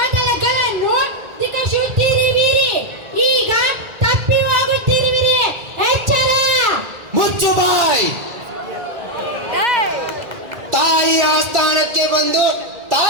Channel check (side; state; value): left; late; 1.9 ms